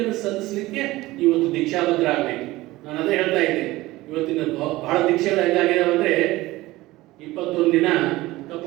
ಸಲ್ಲಿಸಲಿಕ್ಕೆ ಇವತ್ತು ದೀಕ್ಷಾಬದ್ಧ ಆಗಬೇಕು. ನಾನು ಅದೇ ಹೇಳ್ತಾ ಇದ್ದೆ, ಇವತ್ತಿನ ಬಹಳ ದೀಕ್ಷೆಗಳು ಹೆಂಗಾಗಿದಾವೆ ಅಂದ್ರೆ 21 ದಿನ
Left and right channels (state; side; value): quieter; left; 18.6 dB